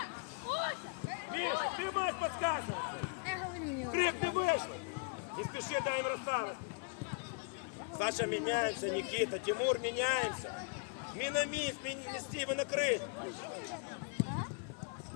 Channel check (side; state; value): right; quieter; 33.3 dB